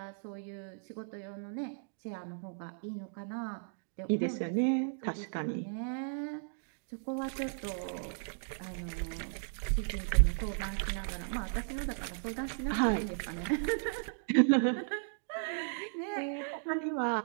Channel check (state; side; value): silent; left; digital silence